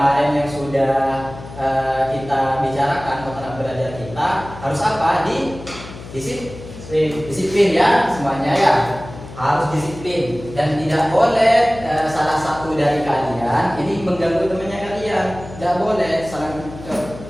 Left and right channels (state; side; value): noise; left; hum, 15 dB below the sound